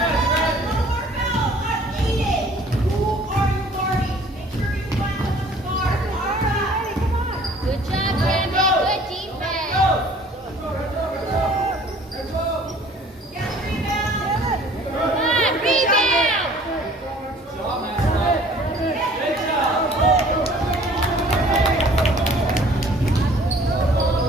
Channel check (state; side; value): normal; both; correlation 0.53